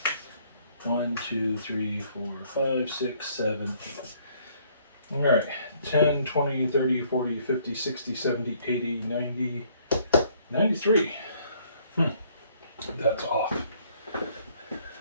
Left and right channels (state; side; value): inverted; both; correlation -0.63